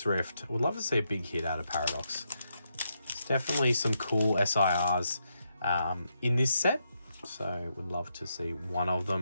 Rift. Would love to see a big hit out of Paradox. There's definitely some cool SIRs in this set. So would love to see one of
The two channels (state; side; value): inverted; both; correlation -0.82